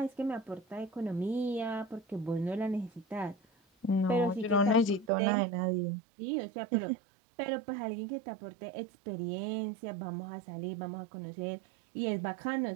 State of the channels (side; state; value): left; drops out; at 5.1 s